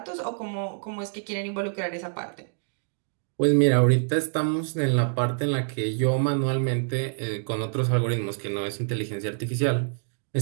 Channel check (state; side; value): silent; left; digital silence